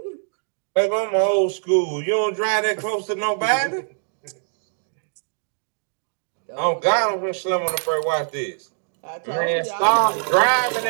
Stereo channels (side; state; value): left; silent; digital silence